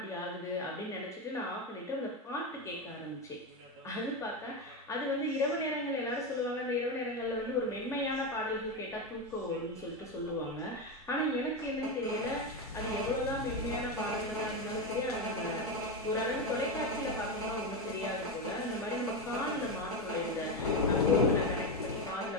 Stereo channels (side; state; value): both; normal; correlation 0.13